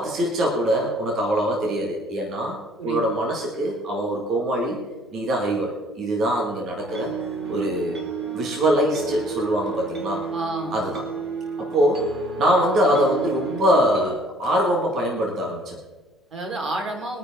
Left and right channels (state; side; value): normal; both; correlation 0.57